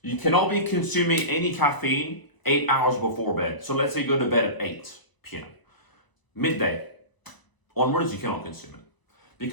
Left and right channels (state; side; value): late; right; 1.0 ms